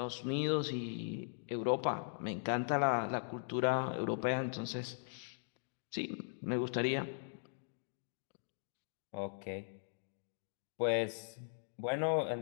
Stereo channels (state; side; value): silent; right; digital silence